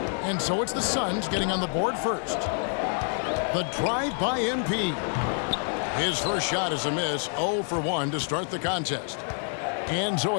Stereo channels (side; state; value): right; silent; 56 dB below the other